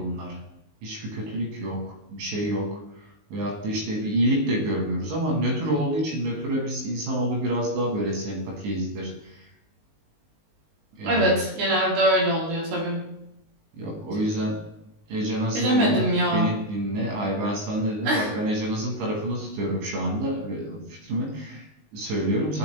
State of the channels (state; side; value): late; left; 19 ms